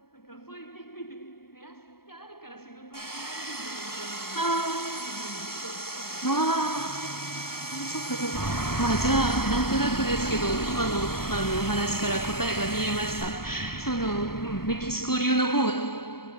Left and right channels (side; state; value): right; late; 0.94 ms